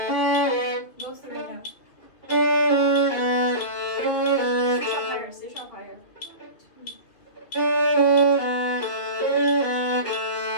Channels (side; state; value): right; late; 2.9 ms